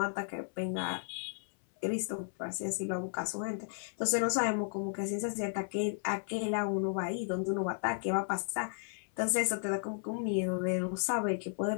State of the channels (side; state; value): right; silent; 55 dB below the other